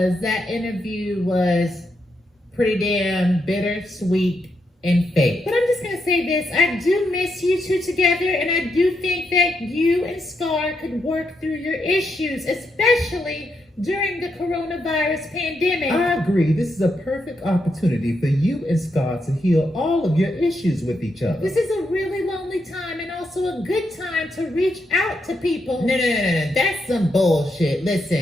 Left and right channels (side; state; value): both; normal; correlation 0.81